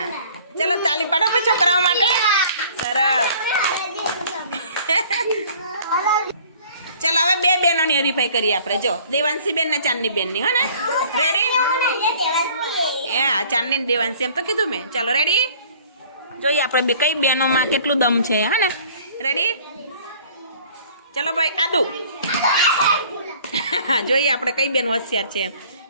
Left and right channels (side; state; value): both; inverted; correlation -0.52